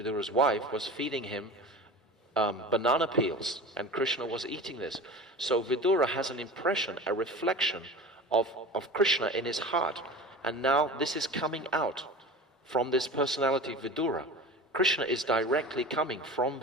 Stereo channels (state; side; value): normal; both; correlation 0.34